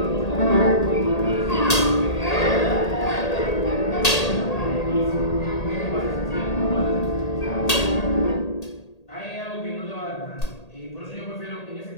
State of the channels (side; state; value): right; late; 1.8 ms